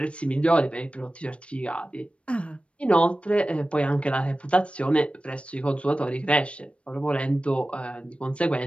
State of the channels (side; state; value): right; late; 0.061 ms